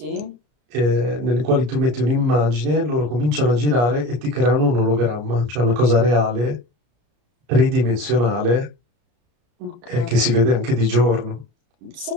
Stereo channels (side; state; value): left; late; 34 ms